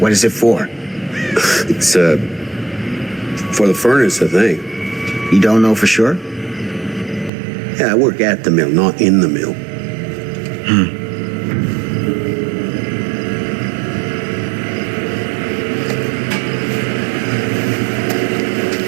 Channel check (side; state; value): left; drops out; at 7.3 s